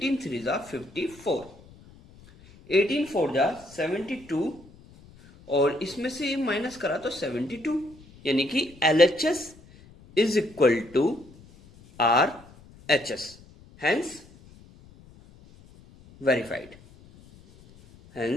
3 जा 54, 18 4 जा 72 और इसमें से माइनस करा तो 72, यानी कि LHS is equal to RHS, hence verified.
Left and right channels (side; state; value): left; noise; rumble, 24 dB below the sound